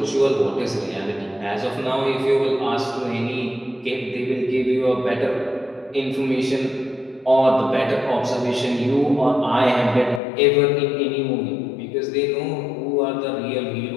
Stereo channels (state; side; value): drops out; right; at 10.2 s